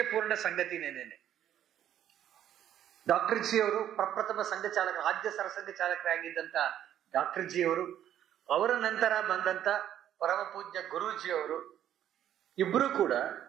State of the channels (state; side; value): quieter; left; 10.9 dB